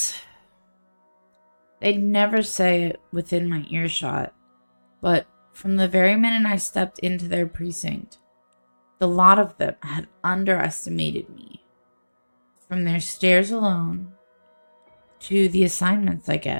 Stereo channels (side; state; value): both; inverted; correlation -1.00